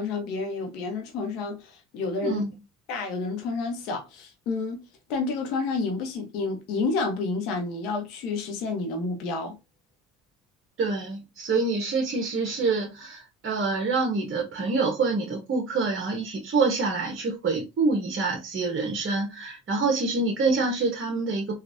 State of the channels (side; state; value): both; normal; correlation 0.33